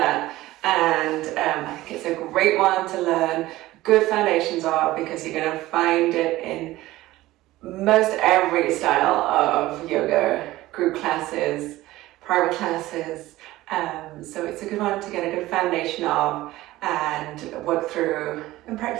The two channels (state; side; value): quieter; left; 17.1 dB